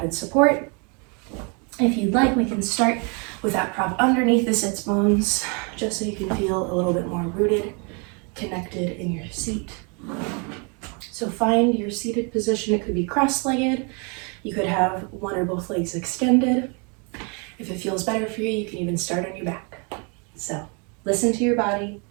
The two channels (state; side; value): quieter; left; 34.7 dB